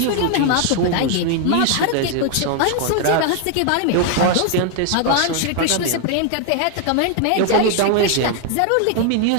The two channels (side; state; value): both; different; correlation 0.01